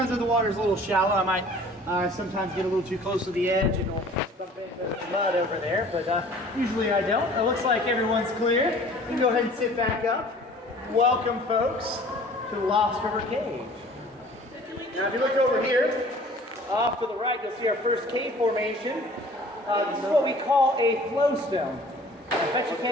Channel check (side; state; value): both; normal; correlation 0.49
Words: if the water's a little shallow, I might sometimes get a little too close to the edge and it'll bump into the mud over there, but usually I don't. It looks like everyone's clear. You can go ahead and sit back up. Welcome, folks, to the Lost River Cave. Now, if you look over here, off to the right, you'll see our first cave formation. This is what we call a flowstone. I bet you